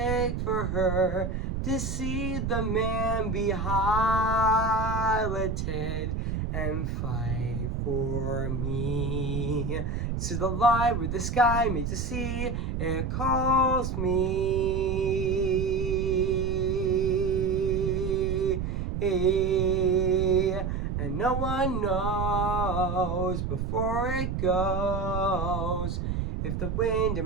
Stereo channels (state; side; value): noise; right; rumble, 2 dB below the sound